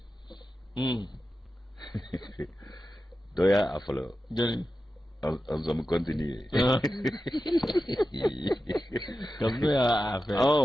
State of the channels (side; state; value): both; normal; correlation 0.92